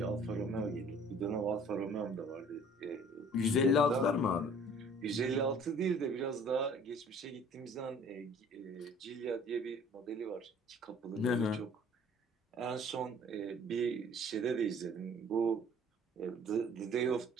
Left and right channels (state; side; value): normal; both; correlation 0.52